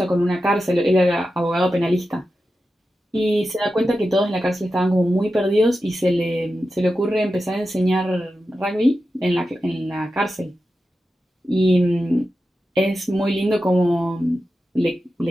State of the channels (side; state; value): both; normal; correlation 0.91